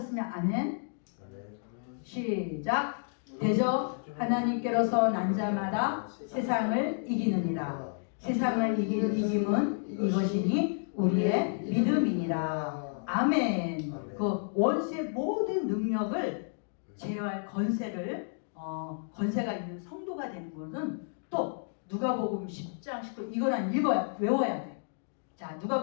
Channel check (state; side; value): silent; right; digital silence